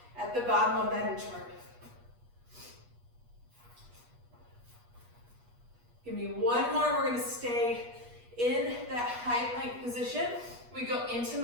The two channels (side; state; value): left; late; 8.3 ms